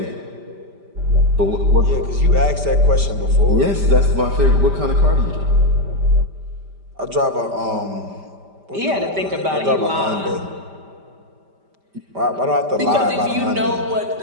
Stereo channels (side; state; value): left; late; 5.1 ms